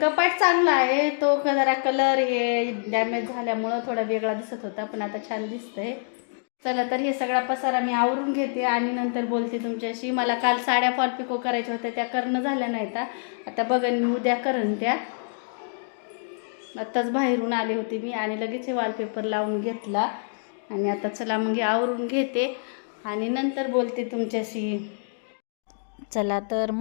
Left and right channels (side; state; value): right; silent; digital silence